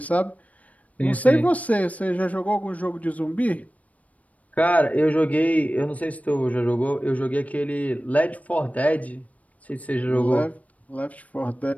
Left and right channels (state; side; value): late; right; 0.069 ms